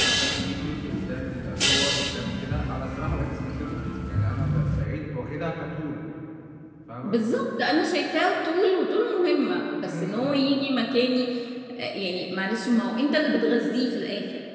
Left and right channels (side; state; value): both; identical; correlation 1.00